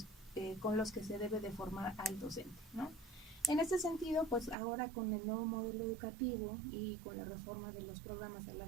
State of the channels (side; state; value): left; drops out; at 4.5 s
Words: con los que se debe de formar al docente, ¿no? En este sentido, pues ahora con el nuevo modelo educativo y con la reforma de los programas a